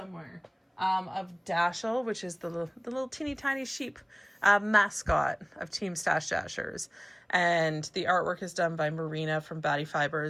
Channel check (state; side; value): identical; both; correlation 1.00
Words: Of Dashel, which is the little teeny tiny sheep mascot of Team Stash Dashers. And the artwork is done by Merino from Batty